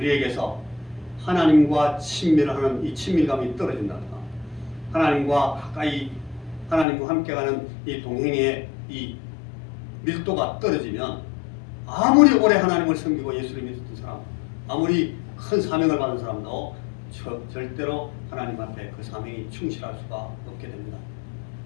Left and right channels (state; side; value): drops out; right; at 6.9 s